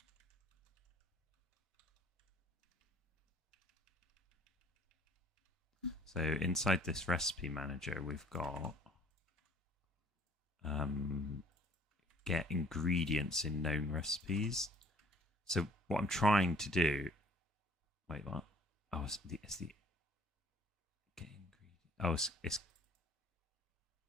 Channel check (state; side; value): normal; both; correlation 0.54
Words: So inside this recipe manager, we've got get ingredients in known recipes. So what I'm trying to do, wait, what? Oh, it's the get ingredient. Oh, it's